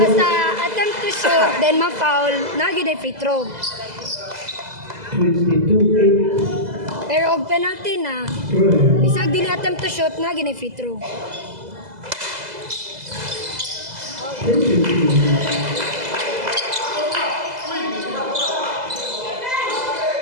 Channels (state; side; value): late; left; 2.0 ms